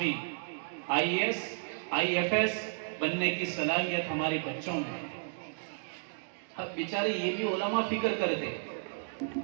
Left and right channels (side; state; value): left; silent; digital silence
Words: IAS IFS بننے کی صلاحیت ہمارے بچوں میں ہے۔ اب بیچارے یہ بھی علماء فکر کرتے۔